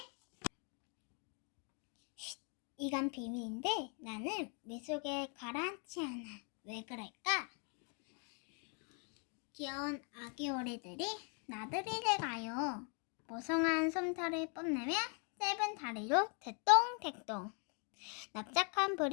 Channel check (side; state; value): right; quieter; 38.4 dB